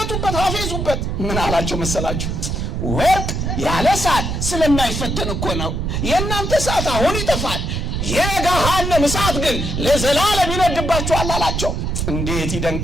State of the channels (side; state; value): right; noise; rumble, 2 dB below the sound